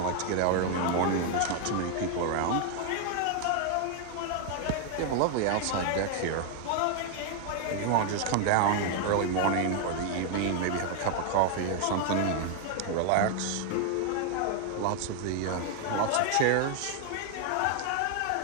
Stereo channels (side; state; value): both; different; correlation 0.00